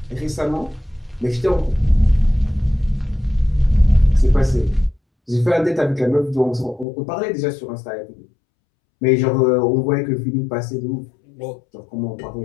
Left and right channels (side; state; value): right; drops out; at 6.9 s